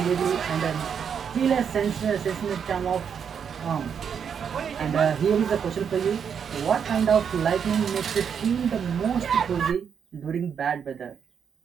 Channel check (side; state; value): left; quieter; 7.3 dB